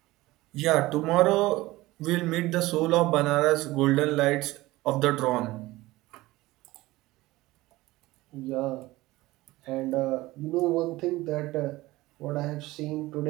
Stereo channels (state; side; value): quieter; left; 18.8 dB